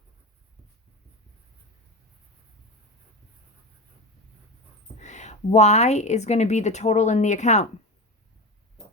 Y is going to be the total in the account.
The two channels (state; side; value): normal; both; correlation 0.22